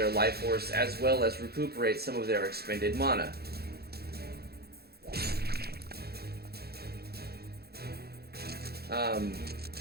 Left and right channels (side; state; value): left; late; 0.46 ms